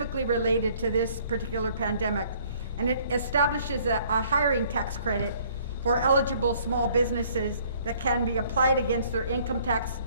related to this particular pandemic. And it establishes a hiring tax credit for eligible small businesses that can be applied against their income tax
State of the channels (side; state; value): both; inverted; correlation -0.59